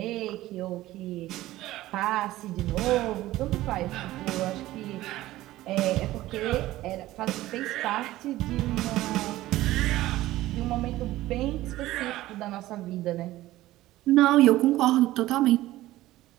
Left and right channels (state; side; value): quieter; left; 16.2 dB